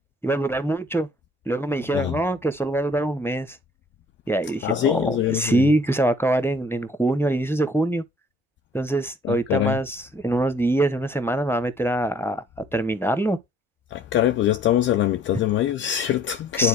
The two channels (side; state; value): both; normal; correlation 0.58